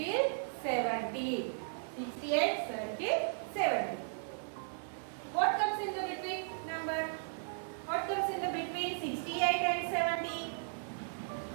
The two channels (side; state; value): left; silent; 54 dB below the other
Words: 70. 68 circle 70. What comes in the between number? What comes in the between 68 and 70?